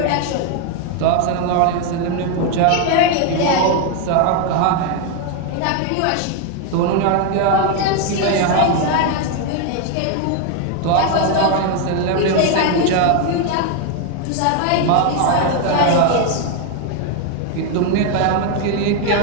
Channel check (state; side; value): different; both; correlation 0.01